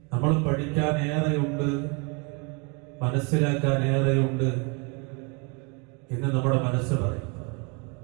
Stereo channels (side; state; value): left; quieter; 31.9 dB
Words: നമ്മൾ പഠിക്കാൻ ഏറെയുണ്ട്, മനസ്സിലാക്കാൻ ഏറെയുണ്ട് എന്ന് നമ്മുടെ മനസ്സ് പറയും.